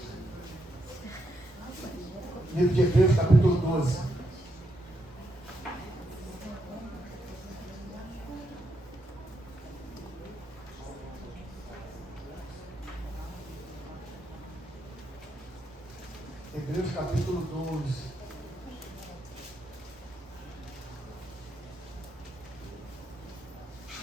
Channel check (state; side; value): normal; both; correlation 0.80